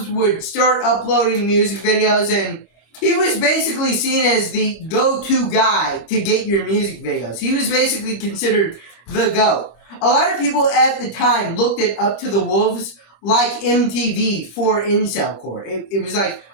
would start uploading music videos, and he was basically seen as the go-to guy to get your music videos. He was basically considered the GOAT. A lot of people at the time looked at Up to the Wolves like MTV for incelcore. It was like,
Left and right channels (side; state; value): right; late; 25 ms